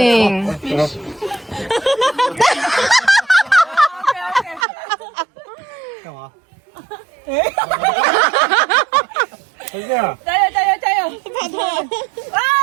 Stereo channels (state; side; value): drops out; left; at 4.7 s